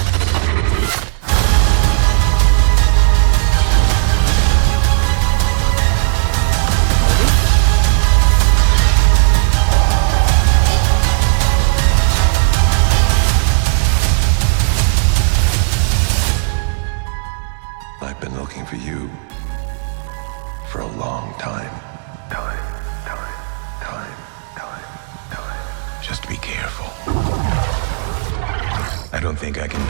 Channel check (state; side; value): silent; left; digital silence